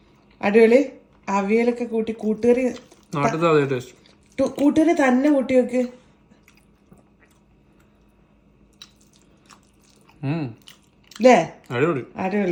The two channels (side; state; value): both; identical; correlation 1.00